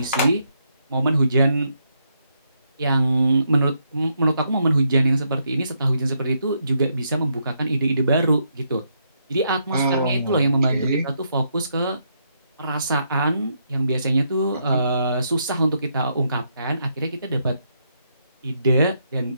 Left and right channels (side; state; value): both; inverted; correlation -0.77